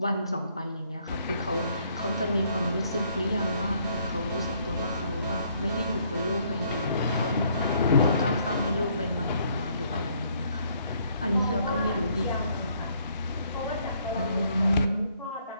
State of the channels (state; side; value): inverted; both; correlation -0.67